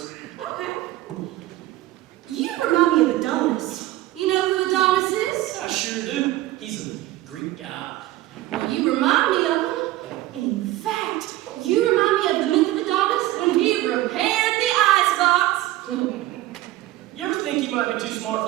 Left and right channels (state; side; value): quieter; left; 16.4 dB